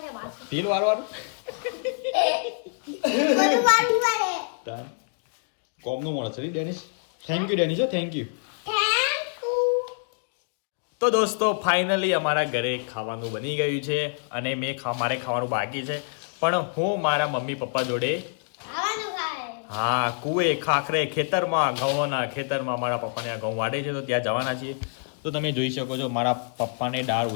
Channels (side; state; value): right; silent; digital silence